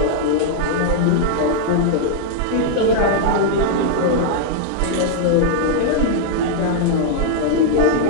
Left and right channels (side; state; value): both; different; correlation -0.01